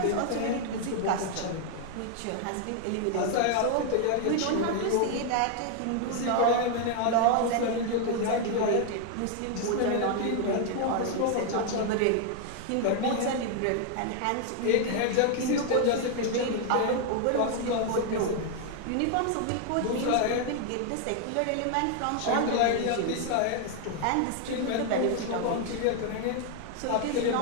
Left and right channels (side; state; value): both; different; correlation 0.00